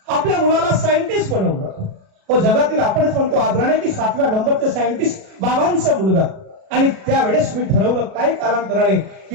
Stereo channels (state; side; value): late; left; 37 ms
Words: आपल्या मुलाला सायंटिस्ट बनवलं. तो जगातील आपणच म्हणतो आदराने की 7व्या नंबरचे सायंटिस्ट बाबांचा मुलगा. आणि त्यावेळेस मी ठरवलं काही कालांतराने